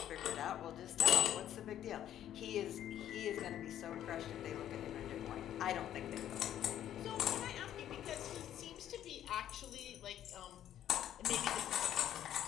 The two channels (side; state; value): right; quieter; 11.3 dB